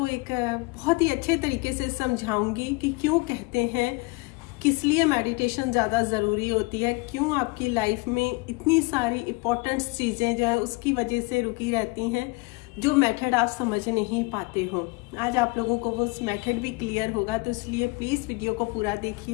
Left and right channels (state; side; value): quieter; right; 25.9 dB